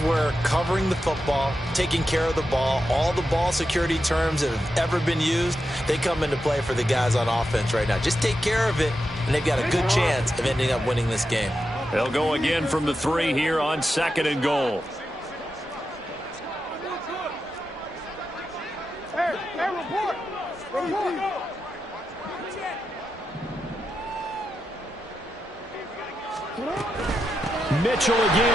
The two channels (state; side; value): normal; both; correlation 0.88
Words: covering the football, taking care of the ball, all the ball security terms that have ever been used, they come into play for the guys on offense right now. Just take care of it, and they've got a good chance of ending up winning this game. They'll go again from the 3 here on 2nd and goal. Hey, report. Mitchell